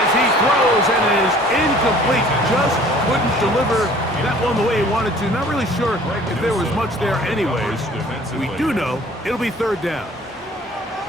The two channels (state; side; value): normal; both; correlation 0.52